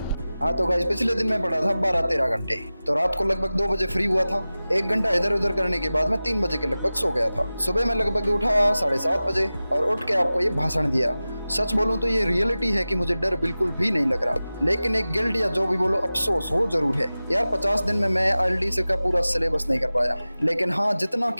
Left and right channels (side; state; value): both; inverted; correlation -0.96